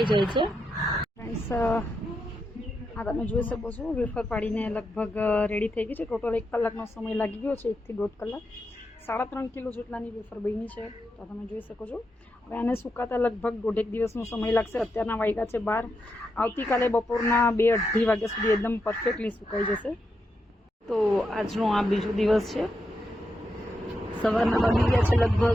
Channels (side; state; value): both; normal; correlation 0.85